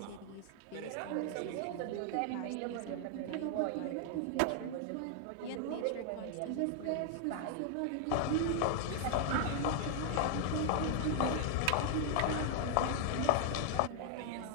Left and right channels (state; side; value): different; both; correlation 0.00